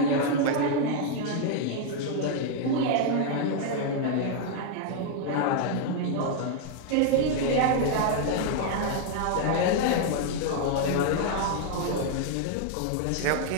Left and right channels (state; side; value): different; both; correlation 0.00